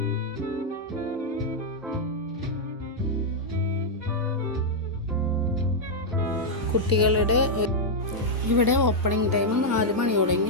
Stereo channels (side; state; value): both; normal; correlation -0.04